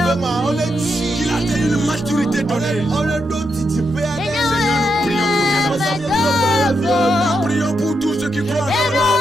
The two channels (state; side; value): normal; both; correlation 0.83